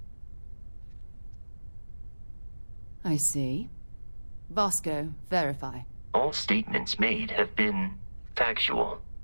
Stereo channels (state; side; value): inverted; both; correlation -1.00